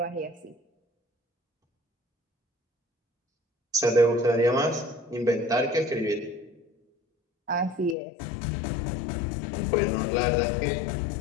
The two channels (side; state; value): right; drops out; at 8.0 s